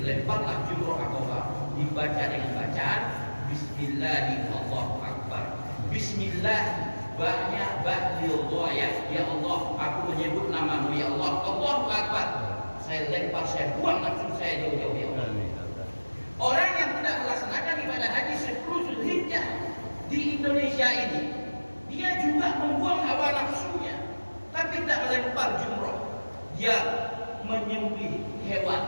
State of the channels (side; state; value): both; inverted; correlation -1.00